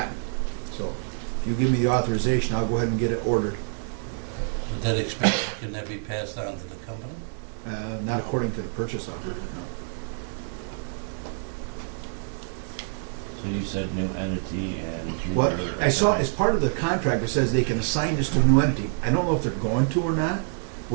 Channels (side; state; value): left; silent; digital silence